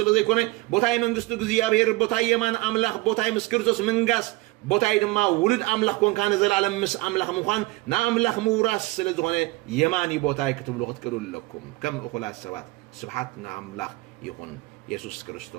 كونه بوتاي منقستو جزيابير بوتاي يمان أملاخ بوتاي مسكرتوس منقاس بوتاي دما ولد أملاخ كون كان زلالم مس أملاخ مخان نا أملاخ موراس سلزغني يماني بوتاي كتب لغت كلول لكم كم أخلاص سبات سبحاتنا أملاخ يخون يسوع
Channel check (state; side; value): quieter; left; 21.8 dB